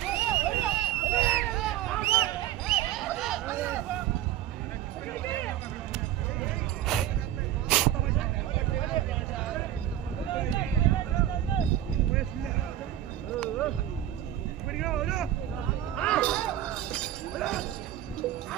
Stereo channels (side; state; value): left; quieter; 12.2 dB